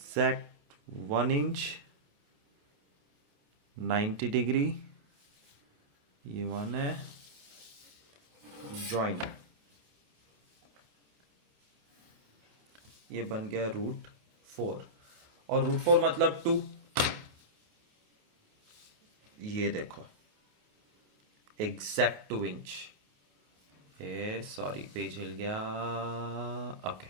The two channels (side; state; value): left; late; 28 ms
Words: 1 इंच 90 डिग्री, ये 1 है. ज्वाइन. ये बन गया √4 और √4 मतलब 2। ये देखो एग्जैक्ट 2 इंच। ए सॉरी पेज हिल गया। ओके